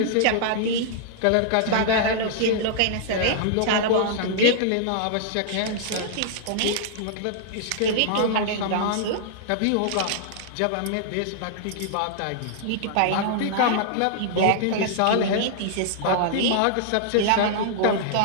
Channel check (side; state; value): both; different; correlation -0.01